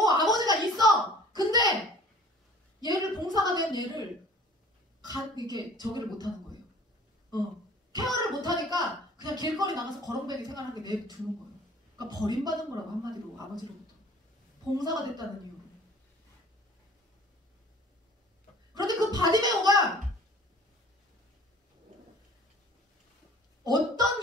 아버지가 있어. 근데 얘를 봉사가 된 얘를 이렇게 저기를 못하는 거예요. 케어를 못하니까 그냥 길거리 나가서 거렁뱅이 생활하게 내두는 거예요. 그러니까 버림받은 거라고 한마디로 아버지로부터. 봉사가 됐다는 이유로. 그런데 그 바디메오가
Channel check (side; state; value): both; normal; correlation 0.48